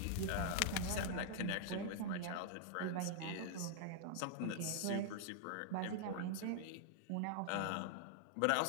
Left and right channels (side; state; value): both; different; correlation -0.01